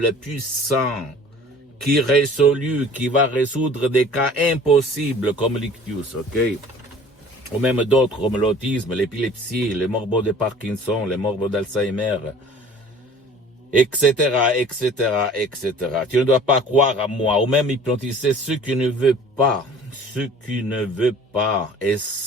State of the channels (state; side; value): normal; both; correlation 0.48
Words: puissante, qui va résoudre des cas impossibles comme l'ictus, ok? Ou même d'autres comme l'autisme, l'épilepsie, les morbos de Parkinson, les morbos d'Alzheimer, etc., etc., etc. Tu ne dois pas croire à moi, ou même hypnotiser ceux qui ne veulent pas, et